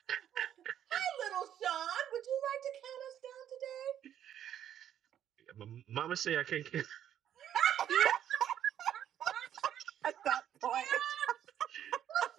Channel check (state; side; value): quieter; left; 10.3 dB